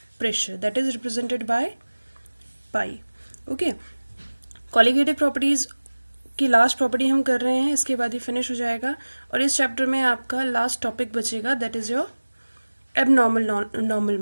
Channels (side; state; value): both; inverted; correlation -1.00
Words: pressure that is represented by pi. Okay, colligative properties की लास्ट प्रॉपर्टी हम कर रहे हैं, इसके बाद ही फिनिश हो जाएगा. और इस चैप्टर में आपका लास्ट टॉपिक बचेगा, that is your